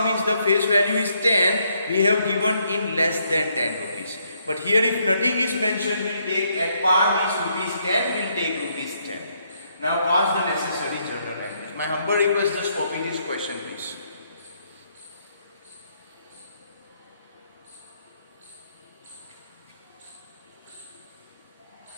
means the face value is 10, we have given in less than 10 rupees. But here if nothing is mentioned, we'll take at par means rupees 10, we'll take rupees 10. Now pass the necessary journal entries. My humble request, just copy this question please.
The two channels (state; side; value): inverted; both; correlation -0.73